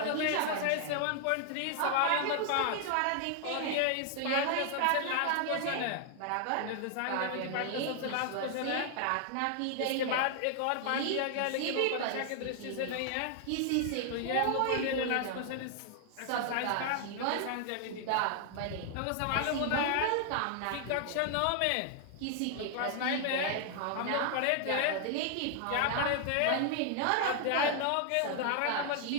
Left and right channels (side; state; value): both; different; correlation 0.00